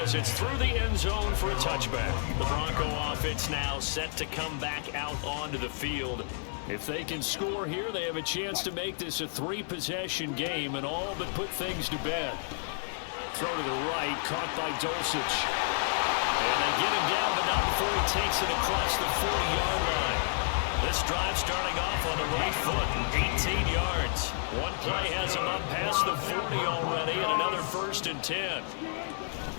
it's through the end zone for a touchback. The Bronco offense now set to come back out onto the field. If they can score here, they have a chance to make this a 3-possession game and all but put things to bed. Throw to the right, caught by Dulcich. And they get him down, but not before he takes it across the 40-yard line. This drive starting off on the right foot, 18 yards. One play has him up past the 40 already, and another 1st and 10.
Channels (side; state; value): right; silent; 58 dB below the other